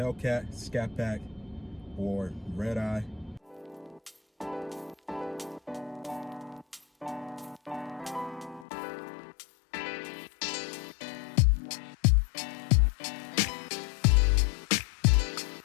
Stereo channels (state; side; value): drops out; right; at 8.7 s